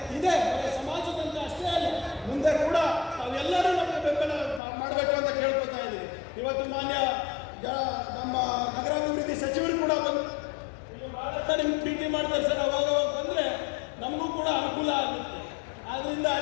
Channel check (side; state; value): right; drops out; at 4.6 s